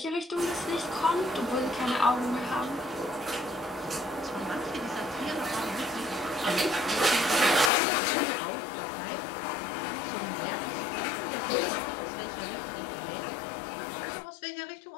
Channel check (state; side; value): drops out; right; at 7.7 s